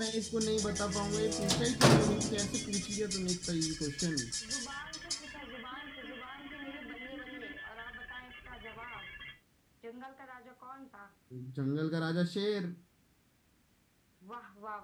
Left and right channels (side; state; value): both; identical; correlation 1.00